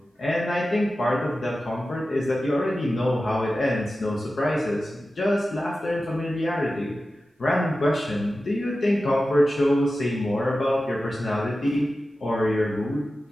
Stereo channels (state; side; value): normal; both; correlation 0.94